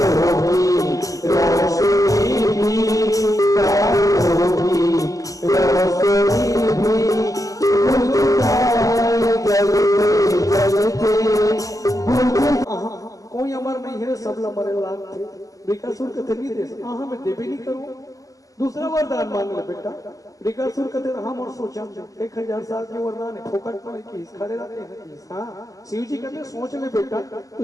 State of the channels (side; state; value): right; late; 0.17 ms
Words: की रोशनी भी, तारों की रोशनी भी बुझ जाए जलते जलते। कोई अमर नहीं है, सब मरे लाग थे। वृकासुर कहते नहीं दे सकता, हाँ मैं देवे नहीं करूँ। दूसरा वरदान मांग ले बेटा। वृकासुर कहते हम और सोचा 1000 साल के वरदान है, फोकट में की खड़े रहते हैं। हाँ, शिव जी कहते सोच ले बेटा,